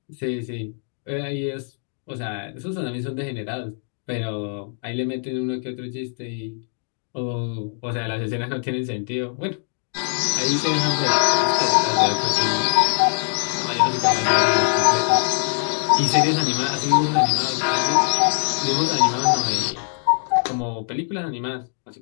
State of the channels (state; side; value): silent; right; 64 dB below the other